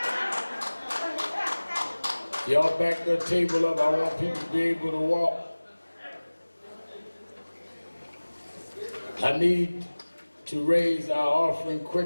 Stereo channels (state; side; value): inverted; both; correlation -1.00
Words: Y'all back the table up. I want people to be able to walk. I need to raise our offering